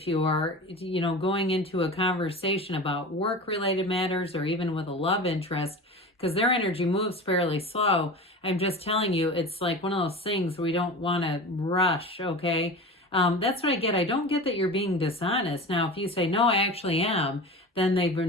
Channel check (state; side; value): normal; both; correlation 0.32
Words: you are, going into a conversation about work-related matters or even with a love interest, because their energy moves fairly slow. I'm just telling you, it's like one of those things we don't want to rush, okay? That's what I get. I don't get that you're being dishonest. Now, if you say, no, I actually am, then they've